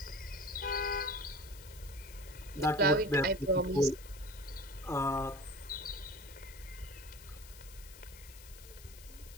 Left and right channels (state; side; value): noise; left; hiss, 18 dB below the sound